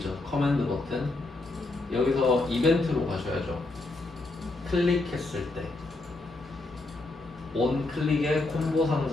커맨드 버튼. 여기서 이벤트로 가셔야죠. 클릭했을 때 온 클릭에 콤보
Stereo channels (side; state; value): right; quieter; 3.0 dB